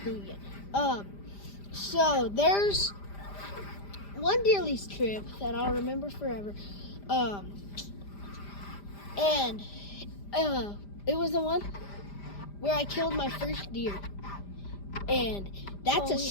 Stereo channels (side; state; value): right; late; 5.0 ms